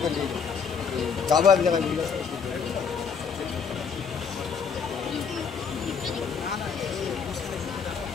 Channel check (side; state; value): right; quieter; 6.2 dB